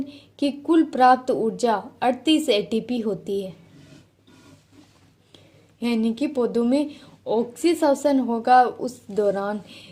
की कुल प्राप्त ऊर्जा 38 एटीपी होती है, यानी कि पौधों में ऑक्सीश्वसन होगा उस दौरान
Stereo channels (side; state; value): both; identical; correlation 1.00